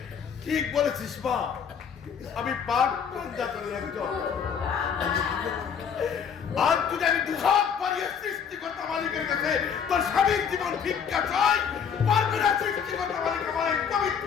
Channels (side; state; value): right; quieter; 7.2 dB